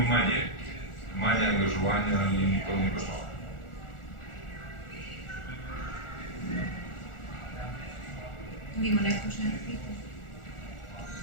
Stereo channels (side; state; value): right; late; 1.4 ms